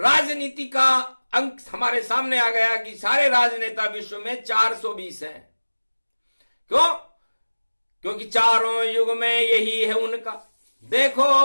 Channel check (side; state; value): both; inverted; correlation -1.00